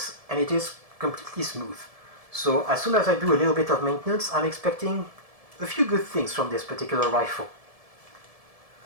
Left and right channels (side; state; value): left; late; 1.7 ms